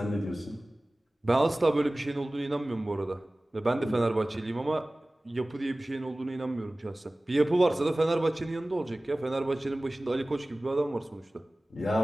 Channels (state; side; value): normal; both; correlation 0.98